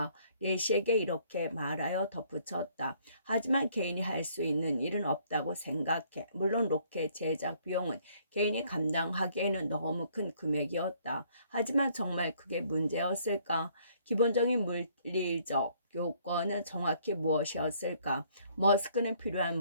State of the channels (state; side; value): inverted; both; correlation -0.63